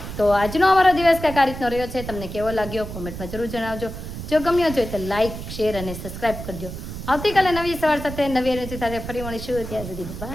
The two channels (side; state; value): right; noise; rumble, 9 dB below the sound